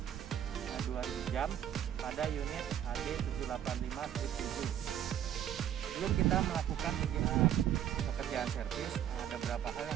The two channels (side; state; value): left; quieter; 10.4 dB